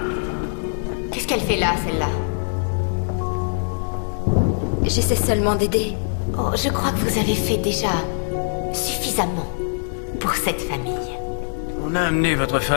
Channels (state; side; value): silent; right; 64 dB below the other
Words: qu'elle fait là, celle-là? J'essaie seulement d'aider. Oh, je crois que vous avez fait déjà suffisamment pour cette famille. On a amené votre